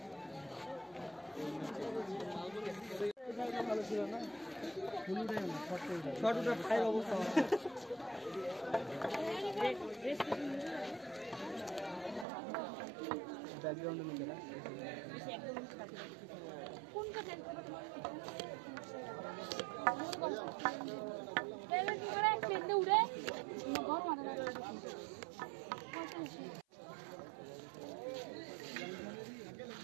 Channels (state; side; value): drops out; left; at 12.2 s